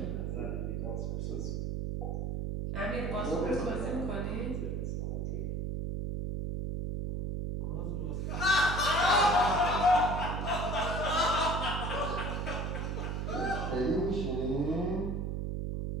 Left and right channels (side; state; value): right; noise; hum, 2 dB below the sound